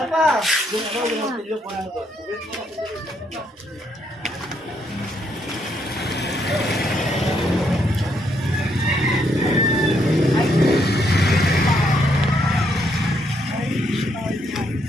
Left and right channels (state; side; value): normal; both; correlation 0.74